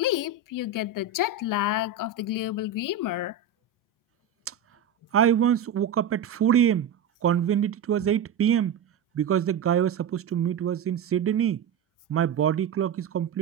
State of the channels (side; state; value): left; quieter; 5.5 dB